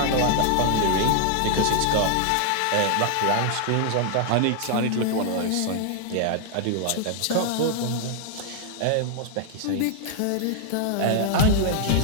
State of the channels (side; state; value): both; different; correlation 0.00